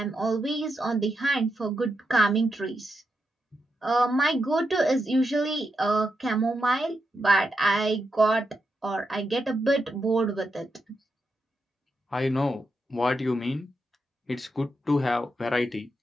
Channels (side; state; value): both; normal; correlation 0.85